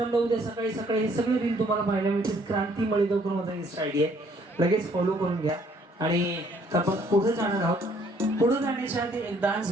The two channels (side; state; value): both; normal; correlation 0.63